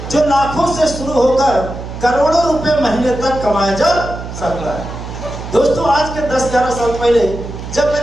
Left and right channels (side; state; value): right; noise; hum, 9 dB below the sound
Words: जो लाखों से शुरू होकर करोड़ों रुपए महीने तक कमाया जा सकता है। दोस्तों आज के 10-11 साल पहले जब